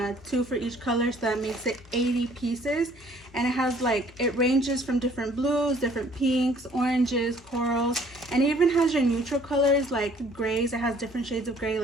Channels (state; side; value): normal; both; correlation 0.58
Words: 2 for each color, so that makes it 80 pieces. And it has like, it ranges from different blues, different pinks, oranges, corals, and it even has your neutral colors like grays. It has different shades of gray,